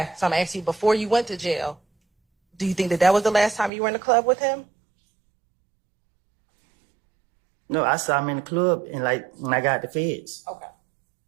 So I'm asking you, before you went to jail, do you think that that was the last time you were in the club with him? No, I saw him in the club and like when I got the feds. Okay.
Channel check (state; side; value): drops out; left; at 3.7 s